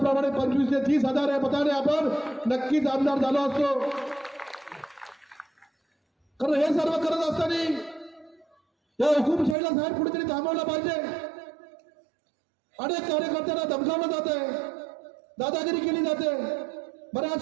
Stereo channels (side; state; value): left; drops out; at 9.6 s